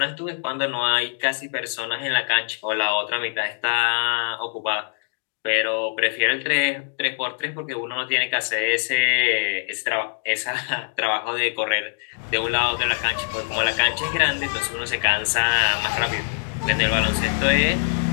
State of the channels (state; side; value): silent; right; 63 dB below the other